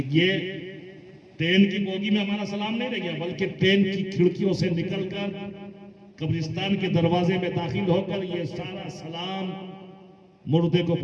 ये ट्रेन की बोगी में हमारा सलाम नहीं रह गया, बल्कि ट्रेन की खिड़कियों से निकलकर कब्रिस्तान के दरवाजे में दाखिल होकर ये सारा सलाम मुर्दे को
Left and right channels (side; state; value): both; identical; correlation 1.00